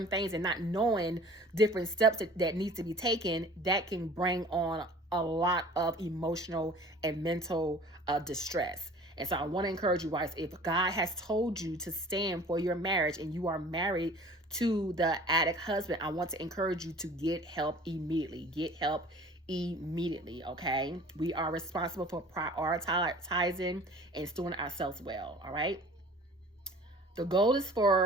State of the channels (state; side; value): normal; both; correlation 0.46